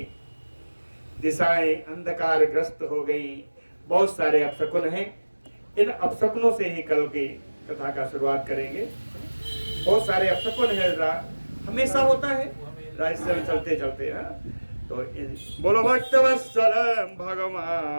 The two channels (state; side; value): inverted; both; correlation -1.00